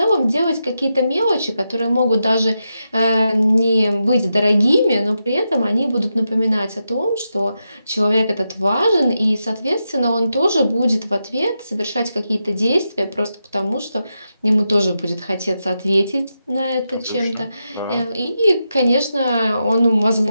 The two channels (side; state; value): both; inverted; correlation -0.87